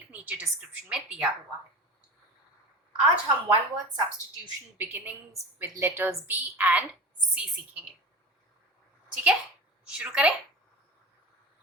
नीचे डिस्क्रिप्शन में दिया हुआ है। आज हम one word substitution beginnings with letters B and C सीखेंगे। ठीक है, शुरू करें।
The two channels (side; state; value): both; normal; correlation 0.32